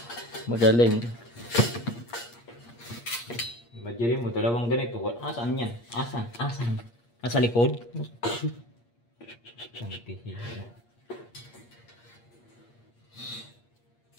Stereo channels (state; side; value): late; right; 8.5 ms